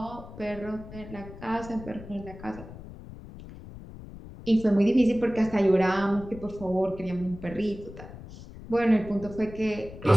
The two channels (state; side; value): noise; left; rumble, 15 dB below the sound